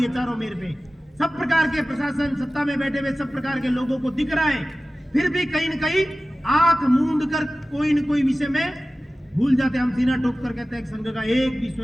है, चारों मेर पे सब प्रकार के प्रशासन सत्ता में बैठे हुए सब प्रकार के लोगों को दिख रहा है, फिर भी कहीं न कहीं आंख मूंद कर कोई न कोई विषय में भूल जाते हैं। हम सीना ठोक कर कहते हैं संघ का एक भी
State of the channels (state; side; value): normal; both; correlation 0.96